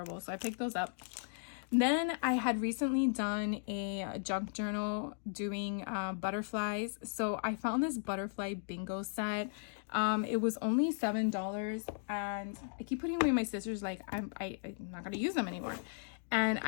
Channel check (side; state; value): right; silent; digital silence